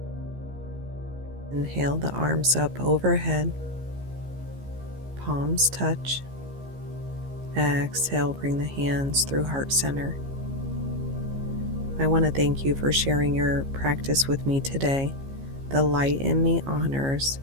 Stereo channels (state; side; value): late; left; 15 ms